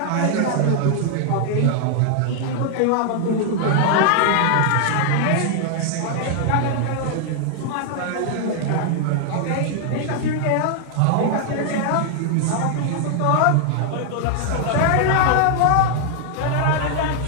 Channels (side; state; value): both; different; correlation 0.00